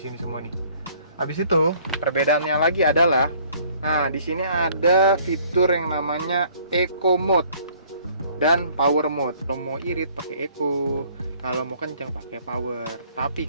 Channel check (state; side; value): inverted; both; correlation -0.58